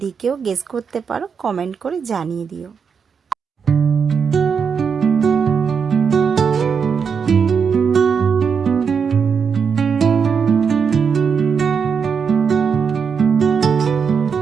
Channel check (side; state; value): left; quieter; 6.3 dB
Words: কেউ গেস করতে পারো কমেন্ট করে জানিয়ে দিও।